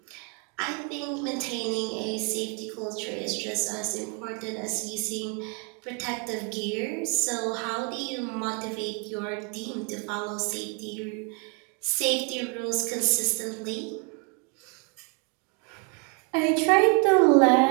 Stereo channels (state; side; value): quieter; left; 34.1 dB